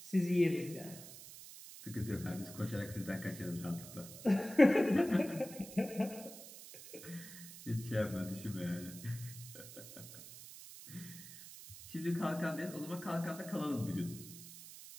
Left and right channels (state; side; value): noise; right; hiss, 14 dB below the sound